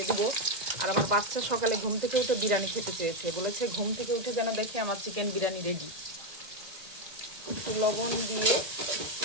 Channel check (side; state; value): left; late; 1.9 ms